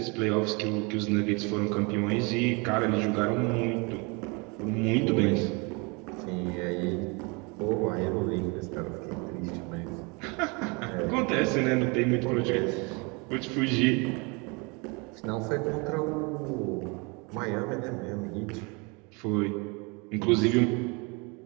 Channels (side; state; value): left; quieter; 29.8 dB